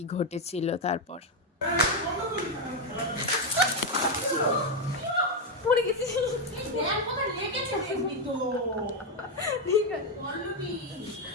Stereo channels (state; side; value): normal; both; correlation 0.04